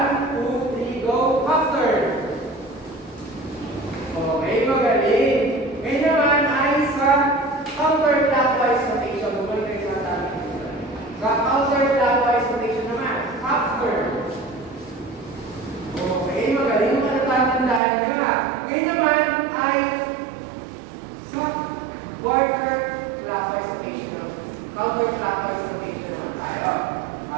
2, 3, go, half turn. Okay, magaling. Ngayon naman ay sa counterclockwise rotation. Bumalik kayo sa atin. Sa counterclockwise rotation naman, half turn. Okay, magaling. Matatandaan nyo. Ngayon naman ay quarter clockwise rotation, counterclockwise rotation naman tayo.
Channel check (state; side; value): drops out; left; at 17.8 s